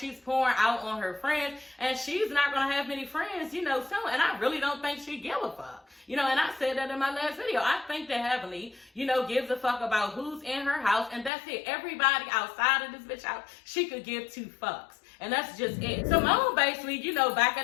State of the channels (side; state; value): right; drops out; at 11.3 s